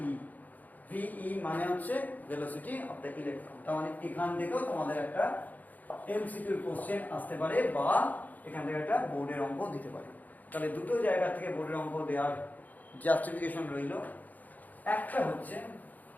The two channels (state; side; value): late; right; 0.080 ms